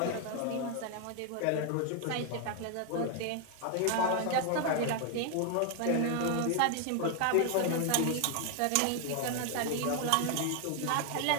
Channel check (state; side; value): different; both; correlation 0.00